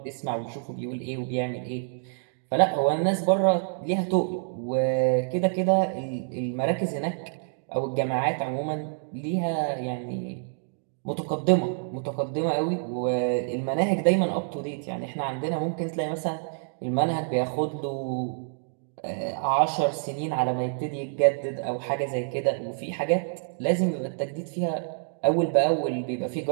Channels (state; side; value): silent; left; digital silence